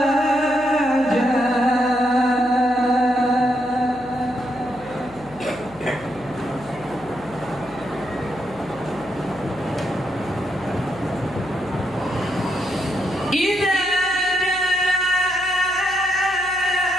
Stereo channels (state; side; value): noise; left; hum, 21 dB below the sound